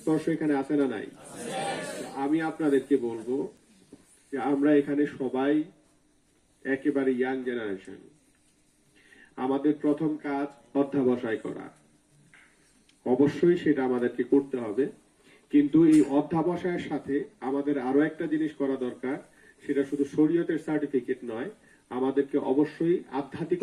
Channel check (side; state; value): both; identical; correlation 1.00